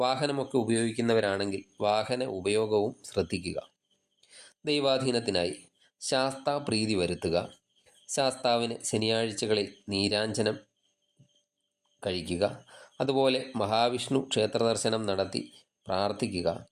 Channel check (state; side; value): identical; both; correlation 1.00